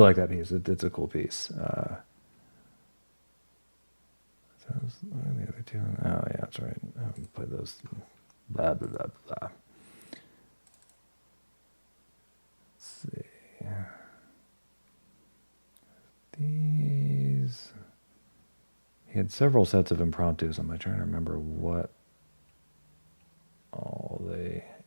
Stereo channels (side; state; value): both; inverted; correlation -1.00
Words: like that piece. It's a cool piece. What are the other two? Oh yeah, that's right. I haven't played those. Blah blah blah blah. Let's see. These. He had several sets of impromptus. I'm trying to remember what all they